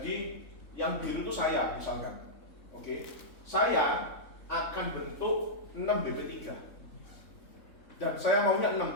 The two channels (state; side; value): late; right; 3.6 ms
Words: yang biru itu saya misalkan, oke, saya akan bentuk 6 BP3 dan saya maunya 6